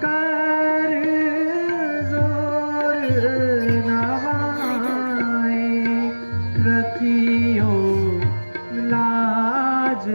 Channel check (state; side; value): inverted; both; correlation -1.00